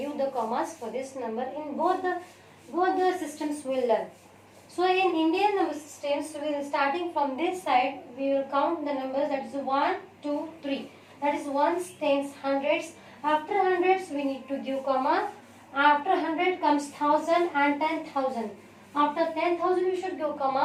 the commas for this number? In both the systems we will learn. So in Indian number systems, we will starting from this side, we will count the numbers, that is 1, 2, 3. That is ones, tens, hundreds. After hundreds, we need to give comma. After 100 comes 1000 and 10,000. After 10,000, we should give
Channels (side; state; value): both; identical; correlation 1.00